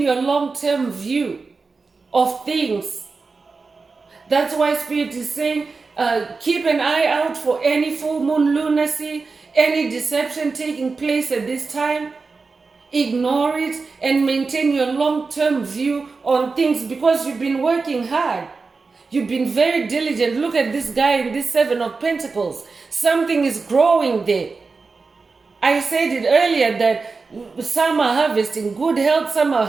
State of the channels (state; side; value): quieter; left; 4.3 dB